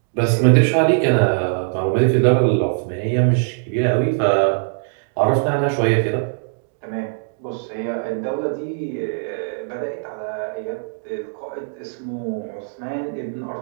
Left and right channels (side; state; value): left; silent; digital silence